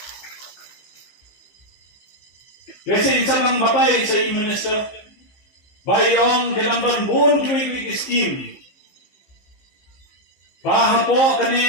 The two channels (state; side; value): late; right; 15 ms